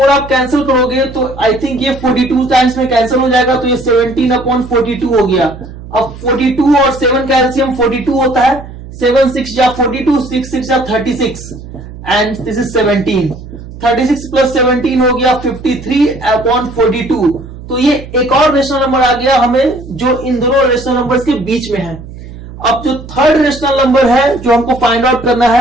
आप कैंसिल करोगे तो आई थिंक ये 42 टाइम्स में कैंसिल हो जाएगा, तो ये 17/42 हो गया। अब 42 और 7 का एलसीएम 42 होता है। 7 6 जा 42, 6 6 जा 36 एंड दिस इज 17। 36 प्लस 17 हो गया 53/42। तो ये एक और रेशनल नंबर आ गया हमें जो इन दोनों रेशनल नंबर्स के बीच में है। अब जो थर्ड रेशनल नंबर है जो हमको फाइंड आउट करना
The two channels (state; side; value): noise; right; hum, 14 dB below the sound